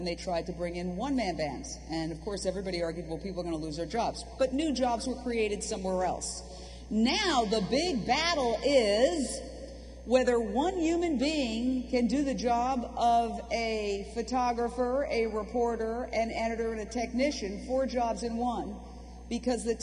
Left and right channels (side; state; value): both; identical; correlation 1.00